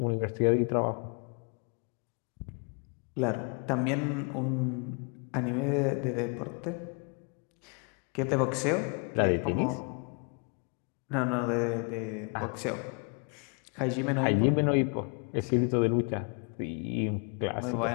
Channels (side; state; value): right; quieter; 37.1 dB